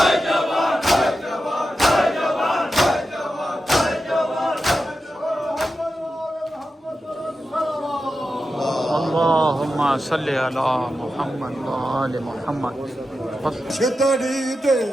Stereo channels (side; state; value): both; normal; correlation 0.90